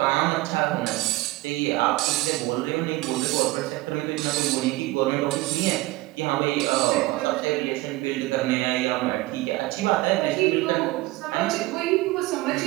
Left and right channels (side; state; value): left; quieter; 19.7 dB